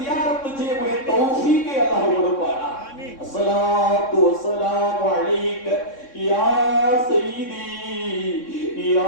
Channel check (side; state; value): right; late; 3.6 ms